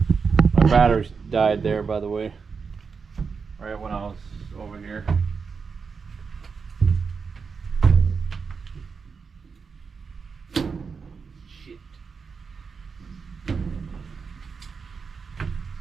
My batteries died there, by the way, right when I was over here.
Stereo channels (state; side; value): quieter; left; 5.4 dB